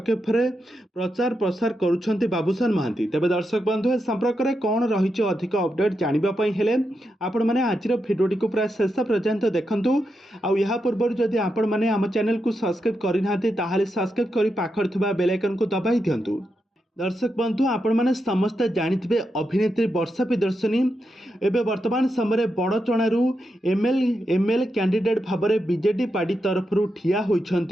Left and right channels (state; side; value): normal; both; correlation 0.86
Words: ପ୍ରଚାର ପ୍ରସାର କରୁଛନ୍ତି ବାବୁସାନ ମହାନ୍ତି। ତେବେ ଦର୍ଶକ ବନ୍ଧୁ, ଏ ସମ୍ପର୍କରେ କ'ଣ ରହିଛି ଅଧିକ ଅପଡେଟ୍ ଜାଣିବା ପାଇଁ ହେଲେ ଆପଣମାନେ ଆଜିର ଭିଡ଼ିଓଟିକୁ ପ୍ରାୟ ଶେଷ ପର୍ଯ୍ୟନ୍ତ ଦେଖନ୍ତୁ। ଆଉ ଏହା ପୂର୍ବରୁ ଯଦି ଆପଣମାନେ ଆମ ଚ୍ୟାନେଲକୁ ସବସ୍କ୍ରାଇବ୍ କରିନାହାନ୍ତି ତାହେଲେ ସବସ୍କ୍ରାଇବ୍ କରି ପାଖରେ ଥିବା ବେଲ୍ ଆଇକନକୁ ଦବାଇ ଦିଅନ୍ତୁ। ଦର୍ଶକ ବନ୍ଧୁ, ଆପଣମାନେ ସମସ୍ତେ ଜାଣିଥିବେ ଅଭିନେତ୍ରୀ ବର୍ଷା ପ୍ରିୟଦର୍ଶିନୀ ଏବେ ବର୍ତ୍ତମାନ ସମୟରେ ବଡ଼ଚଣାରୁ ଏମଏଲଏ କ୍ୟାଣ୍ଡିଡେଟ୍ ଭାବରେ ବିଜେଡି ପାର୍ଟି ତରଫରୁ ଠିଆ